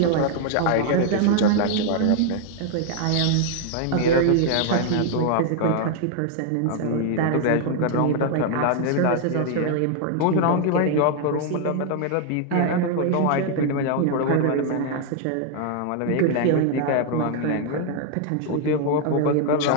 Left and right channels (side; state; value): both; different; correlation 0.00